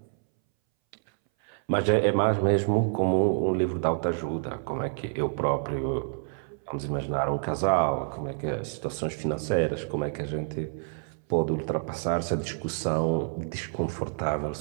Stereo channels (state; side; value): silent; left; 59 dB below the other